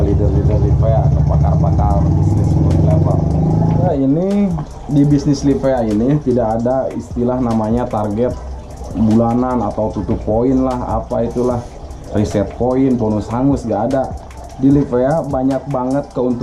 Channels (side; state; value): both; identical; correlation 1.00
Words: leader-leader Livea, ke pakar-pakar bisnis level. Nah, ini di bisnis Livea ini tidak ada istilah namanya target bulanan atau tutup poin lah, apa itulah, reset poin, bonus hangus, gak ada. Di Livea banyak banget